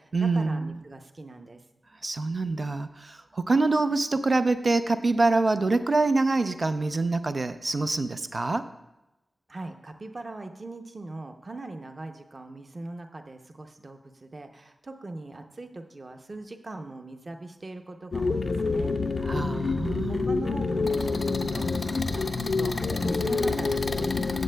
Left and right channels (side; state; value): both; normal; correlation 0.91